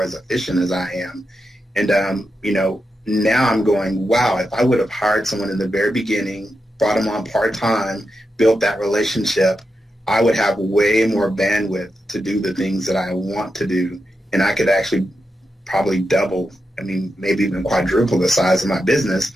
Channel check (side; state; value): both; normal; correlation 0.87